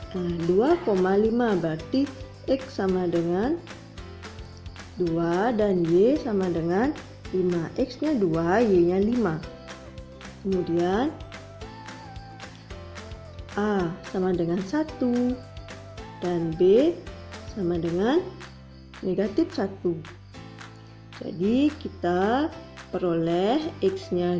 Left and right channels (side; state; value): both; identical; correlation 1.00